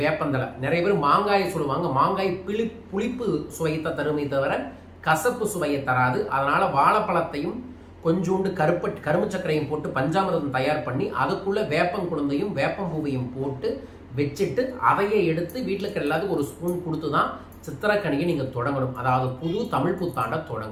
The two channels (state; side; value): identical; both; correlation 1.00